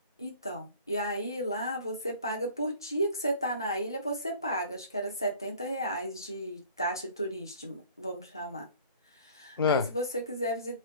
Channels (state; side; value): inverted; both; correlation -0.48